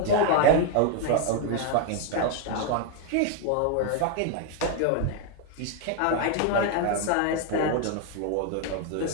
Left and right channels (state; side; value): different; both; correlation 0.01